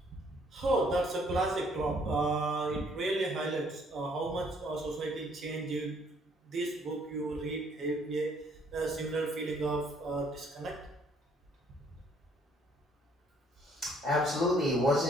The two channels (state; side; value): normal; both; correlation 0.64